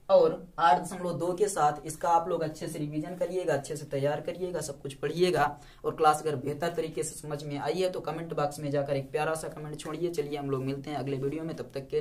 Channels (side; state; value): both; identical; correlation 1.00